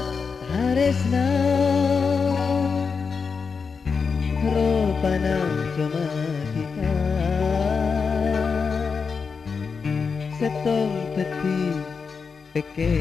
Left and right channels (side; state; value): right; quieter; 5.4 dB